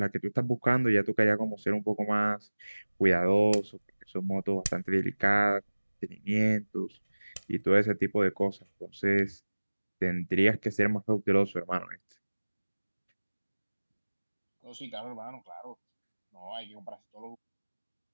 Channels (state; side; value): inverted; both; correlation -1.00